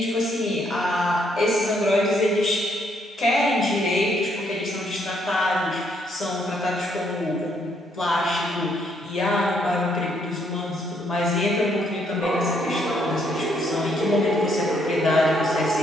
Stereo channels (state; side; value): normal; both; correlation 0.71